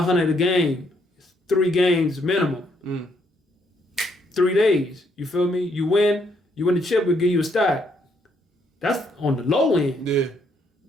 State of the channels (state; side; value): normal; both; correlation 0.72